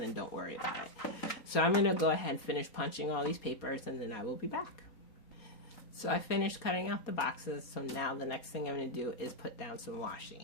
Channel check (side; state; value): right; late; 4.2 ms